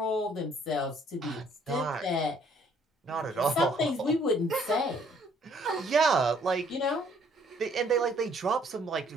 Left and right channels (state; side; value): normal; both; correlation 0.63